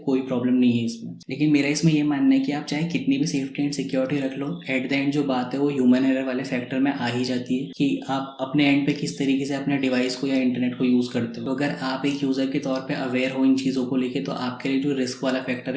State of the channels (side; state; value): both; identical; correlation 1.00